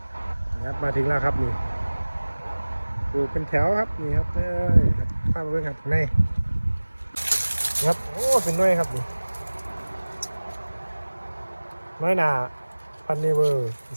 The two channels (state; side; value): inverted; both; correlation -1.00